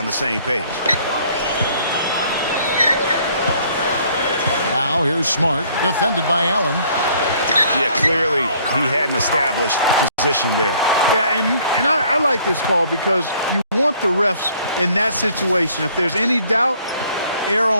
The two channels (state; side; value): inverted; both; correlation -0.60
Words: the same page. Now here's Smart, defended by Allen. Yeah, clearly he had an established position there. Yeah, and I like this call, because you want the refs in that situation, if there's any doubt, err